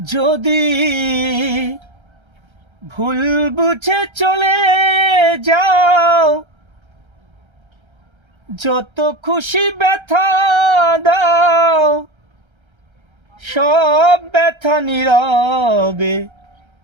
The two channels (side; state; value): left; late; 1.3 ms